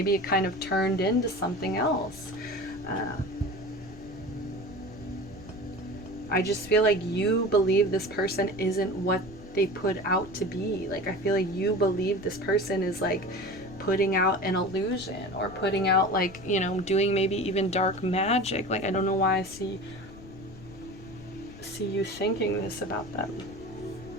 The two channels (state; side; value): noise; left; rumble, 18 dB below the sound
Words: it kind of turned into something else. I just feel like you believe this person isn't what they put out to be. Like, I feel like you believe this person is like putting out an illusion, or putting out like, you know, doing maybe even dark magic. Like, I don't know why I see you thinking this about them.